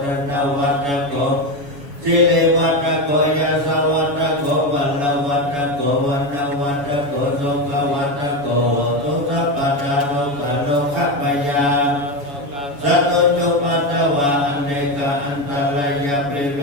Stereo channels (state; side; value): late; left; 7.1 ms